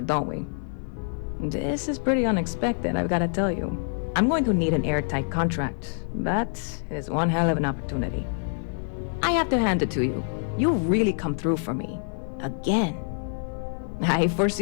don't we? This is pretty unexpected, I've gotta tell you. I'm going to need an airtight contract, but it is one hell of an opportunity. I have to hand it to you. You really come through for me. Again. I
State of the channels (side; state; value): right; silent; 61 dB below the other